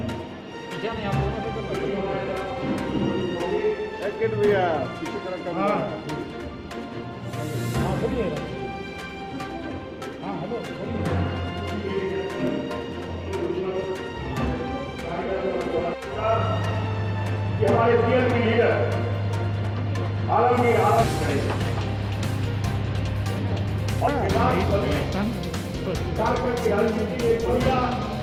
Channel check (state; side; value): identical; both; correlation 1.00